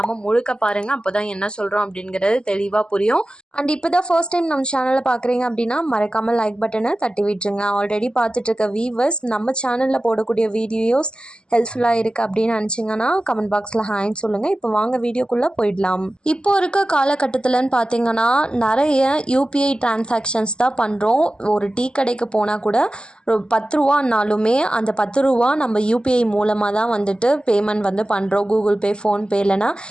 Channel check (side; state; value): right; late; 0.048 ms